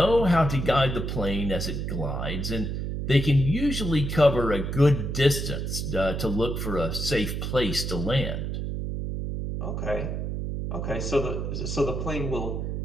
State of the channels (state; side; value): noise; right; hum, 3 dB below the sound